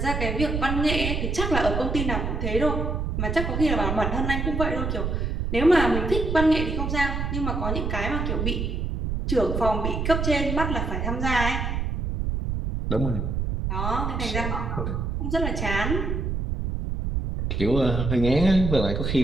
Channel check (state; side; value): noise; right; rumble, 1 dB below the sound